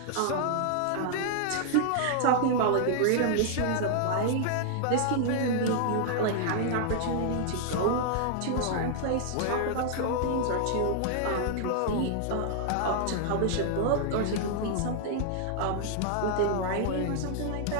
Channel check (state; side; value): different; both; correlation -0.01